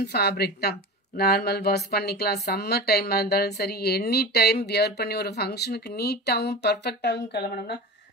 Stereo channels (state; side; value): normal; both; correlation 0.29